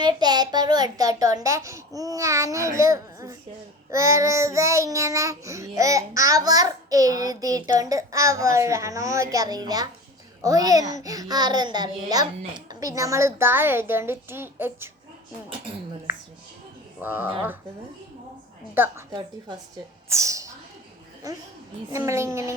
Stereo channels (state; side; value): normal; both; correlation 0.34